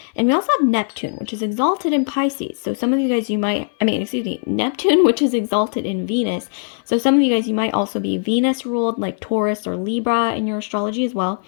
And we also have Neptune, which is exalted in Pisces. So some of you guys, Neptune, which is exalted in Venus. So some of you guys, you might also be Venus ruled, like Taurus or Libra in your astrology as well.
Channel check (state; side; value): silent; right; 66 dB below the other